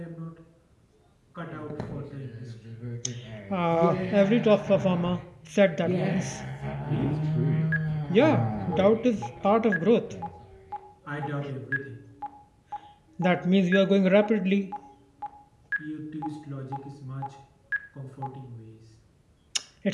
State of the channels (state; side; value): identical; both; correlation 1.00